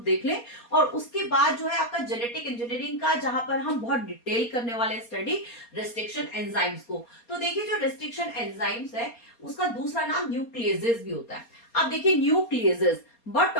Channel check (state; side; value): late; right; 4.3 ms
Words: लें। और उसके बाद जो है आपका जेनेटिक इंजीनियरिंग का, जहां पर हम बहुत डिटेल करने वाले स्टडी रिस्ट्रिक्शन एंजाइम्स को। तो देखिए, जो रिस्ट्रिक्शन एंजाइम्स है उसका दूसरा नाम न्यूक्लियेजेस भी होता है। अब देखिए, न्यूक्लियेजेस बट